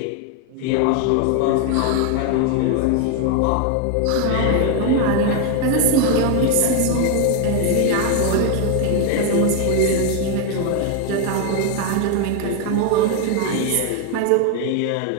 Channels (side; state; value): both; different; correlation 0.01